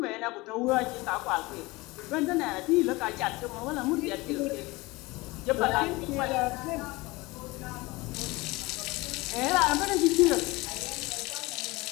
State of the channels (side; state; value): right; quieter; 22.4 dB